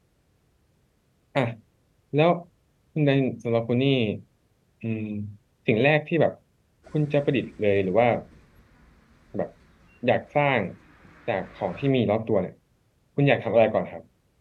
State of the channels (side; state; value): both; identical; correlation 1.00